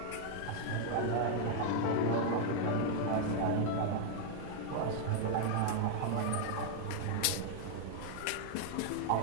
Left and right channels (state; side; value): different; both; correlation 0.00